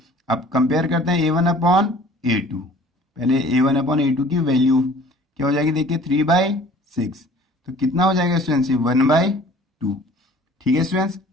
अब कंपेयर करते हैं a1 अपॉन a2। पहले a1 अपॉन a2 की वैल्यू क्या हो जाएगी, देखिए 3/6, तो कितना हो जाएगा स्टूडेंट्स 1/2। ठीक है स्टूडेंट्स,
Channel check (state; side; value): normal; both; correlation 0.50